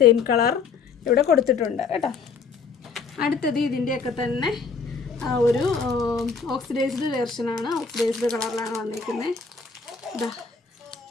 കളർ ഇവിടെ കൊടുത്തിട്ടുണ്ട് കേട്ടോ. അടുത്തത് ഇതിൻ്റെയൊക്കെ തന്നെ ഒരു ഓക്സിഡൈസ്ഡ് വെർഷനാണ്. ഓക്സിഡൈസ്ഡ് കളറിലാണ് വന്നിരിക്കുന്നത്.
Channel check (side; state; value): right; quieter; 5.2 dB